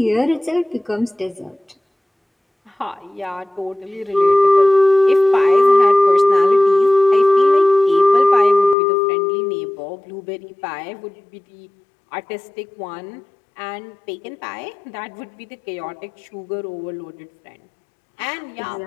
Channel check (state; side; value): drops out; right; at 8.8 s